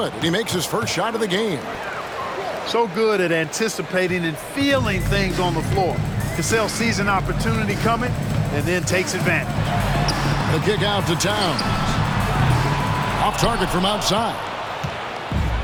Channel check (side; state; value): both; identical; correlation 1.00